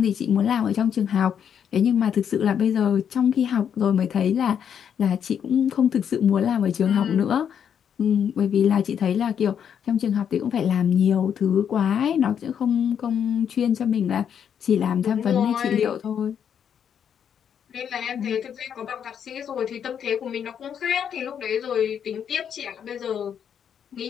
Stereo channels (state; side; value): quieter; right; 8.3 dB